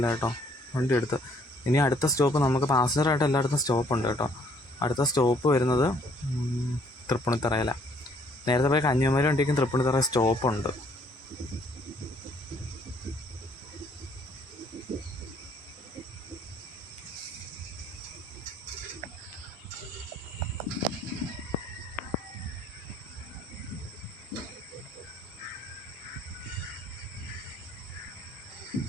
കേട്ടോ വണ്ടി എടുത്ത്. ഇനി അടുത്ത സ്റ്റോപ്പ് നമുക്ക് പാസഞ്ചറായിട്ട് എല്ലായിടത്തും സ്റ്റോപ്പുണ്ട് കേട്ടോ. അടുത്ത സ്റ്റോപ്പ് വരുന്നത് തൃപ്പൂണിത്തറയിലാണ്. നേരത്തെ പോയ കന്യാകുമാരി വണ്ടിക്കും തൃപ്പൂണിത്തറ സ്റ്റോപ്പുണ്ട്.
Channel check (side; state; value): both; normal; correlation 0.63